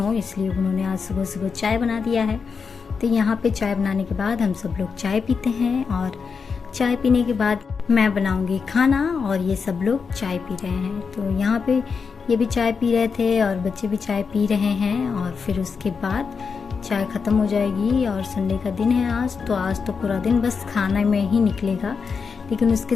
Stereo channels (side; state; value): right; quieter; 5.5 dB